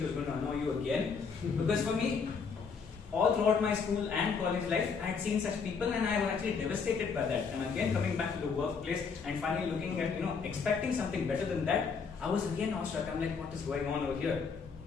who's going to annoy you again? Because for me, all throughout my school and college life, I had seen such people, and I was actually devastated by that. And again, coming back to the workplace and finally looking at, expecting something better than that, I was again awestruck. I'm like, what is going on over here?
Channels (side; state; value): right; quieter; 5.6 dB